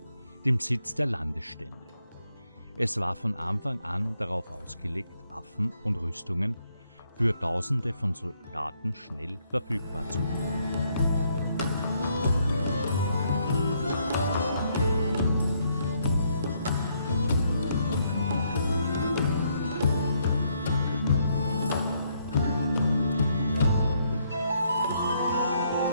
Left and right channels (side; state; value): both; inverted; correlation -0.73